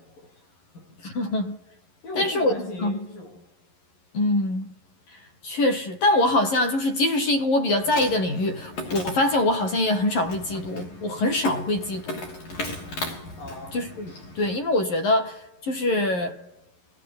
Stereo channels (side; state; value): right; late; 11 ms